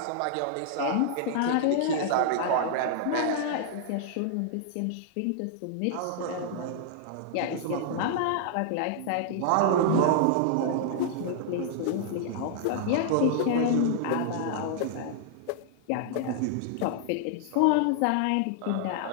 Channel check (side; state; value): both; different; correlation -0.01